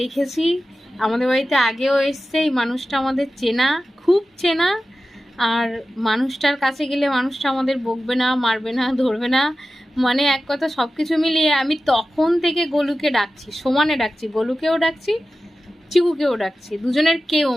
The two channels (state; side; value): normal; both; correlation 0.94